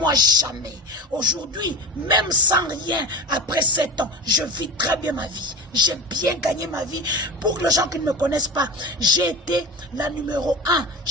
jamais. Aujourd'hui, même sans rien, après 7 ans, je vis très bien ma vie. J'ai bien gagné ma vie. Pour les gens qui ne me connaissent pas, j'ai été la numéro 1,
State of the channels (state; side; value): normal; both; correlation 0.28